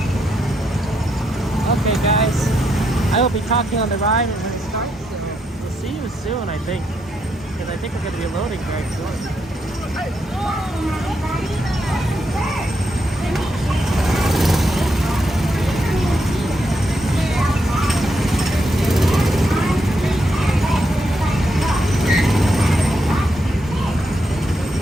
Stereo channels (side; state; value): both; normal; correlation 0.80